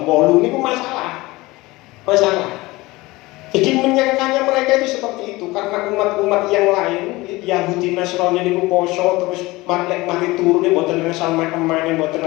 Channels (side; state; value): right; quieter; 20.8 dB